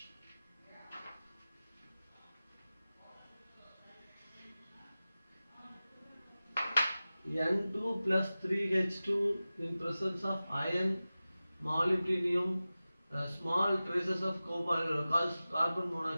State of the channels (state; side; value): inverted; both; correlation -0.96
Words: N2 plus 3H2 in presence of iron, molybdenum, small traces of carbon